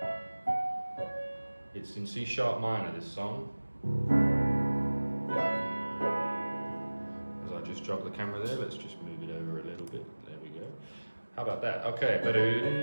It's in C sharp minor, this song. As I just jog the camera there, let's just move it over a little bit. There we go. How about that? Okay.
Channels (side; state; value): both; inverted; correlation -1.00